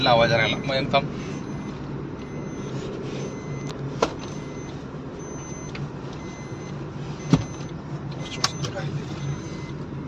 आवाज राहिला. मग थांब.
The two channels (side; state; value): both; identical; correlation 1.00